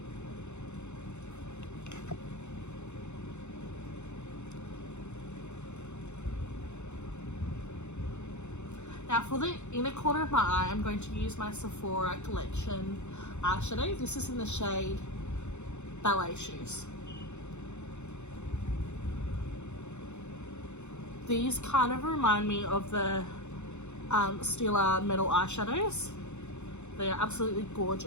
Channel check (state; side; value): late; right; 0.83 ms